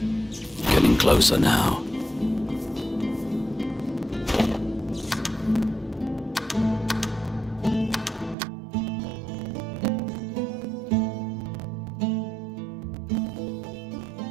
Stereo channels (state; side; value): drops out; left; at 8.3 s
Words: Getting closer now.